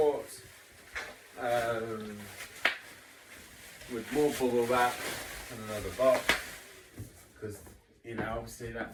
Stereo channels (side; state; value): both; identical; correlation 1.00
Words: with more bubble wrap and another box, because, you know, obviously